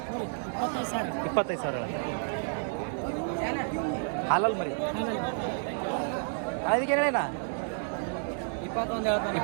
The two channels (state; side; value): silent; left; digital silence